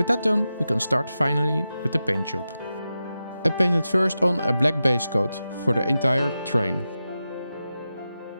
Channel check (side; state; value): both; inverted; correlation -0.92